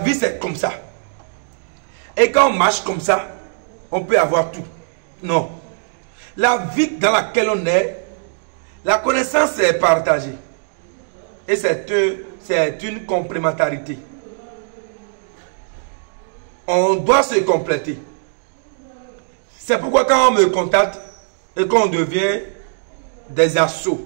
c'est comme ça. Et quand on marche comme ça, on peut avoir tout. Non. La vie dans laquelle on est, la connaissance est partagée. Et c'est une complémentarité. On doit se compléter. C'est pourquoi quand on me contacte et qu'on devient des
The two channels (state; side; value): silent; left; digital silence